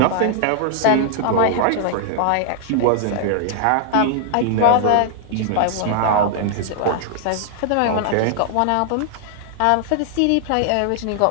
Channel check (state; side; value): different; both; correlation -0.01